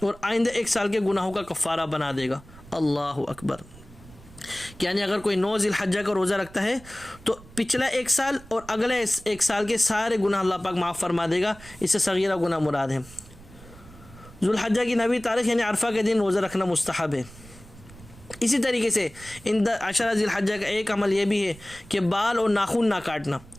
اور آئندہ 1 سال کے گناہوں کا کفارہ بنا دے گا۔ اللہ اکبر۔ یعنی اگر کوئی 9 ذی الحجہ کا روزہ رکھتا ہے تو پچھلا 1 سال اور اگلے 1 سال کے سارے گناہ اللہ پاک معاف فرما دے گا، اس سے صغیرہ گناہ مراد ہے۔ ذوالحجہ کی 9ویں تاریخ یعنی عرفہ کے دن روزہ رکھنا مستحب ہے۔ اسی طریقے سے ان عشرہ ذی الحجہ کا ایک عمل یہ بھی ہے کہ بال اور ناخن نہ کاٹنا،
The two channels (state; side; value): noise; right; rumble, 21 dB below the sound